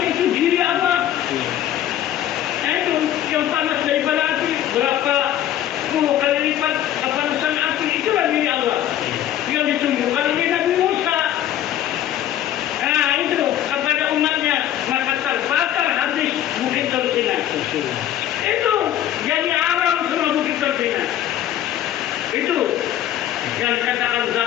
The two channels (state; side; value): quieter; right; 11.9 dB